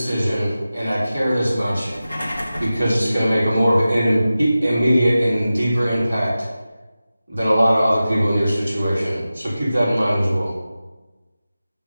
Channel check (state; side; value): inverted; both; correlation -0.95